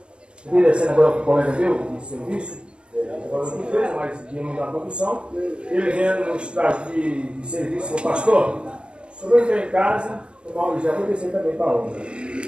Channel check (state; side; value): late; left; 0.055 ms